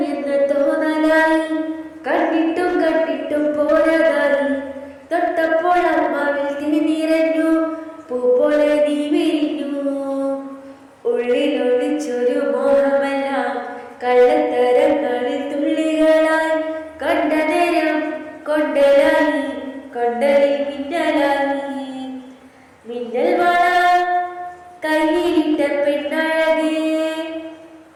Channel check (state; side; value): identical; both; correlation 1.00